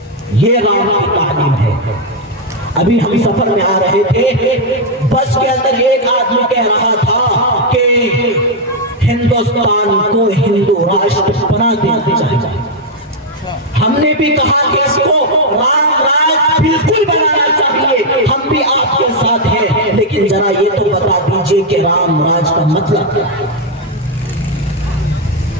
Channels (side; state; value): both; normal; correlation 0.00